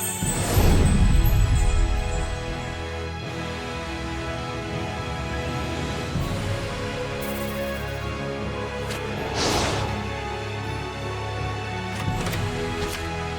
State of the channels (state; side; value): identical; both; correlation 1.00